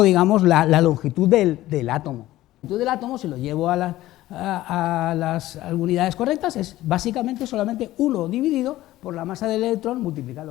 digamos, la longitud del átomo. La longitud del átomo, si lo llevo a las unidades correctas, es básicamente solamente 1 dividido por la masa del electrón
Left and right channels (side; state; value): right; quieter; 15.7 dB